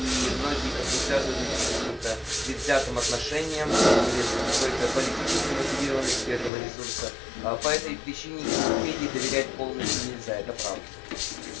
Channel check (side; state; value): right; drops out; at 6.5 s